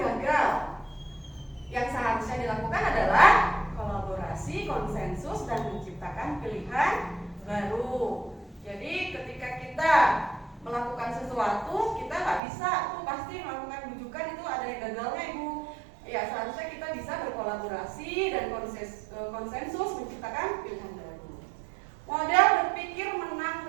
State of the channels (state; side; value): drops out; left; at 12.4 s